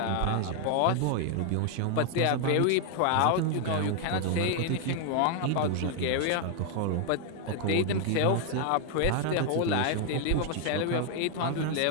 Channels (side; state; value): both; different; correlation 0.00